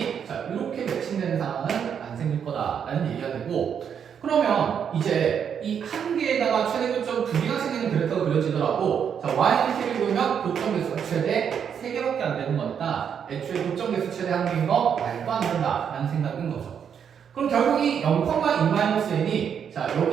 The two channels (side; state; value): left; quieter; 7.8 dB